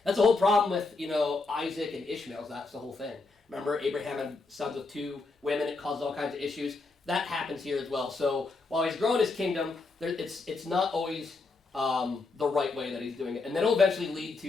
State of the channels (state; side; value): quieter; right; 3.8 dB